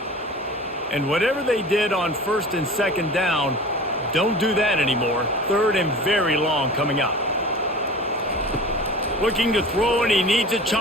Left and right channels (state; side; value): normal; both; correlation 0.38